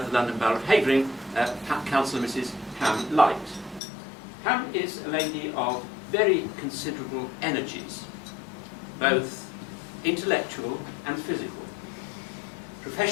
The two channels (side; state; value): right; drops out; at 3.8 s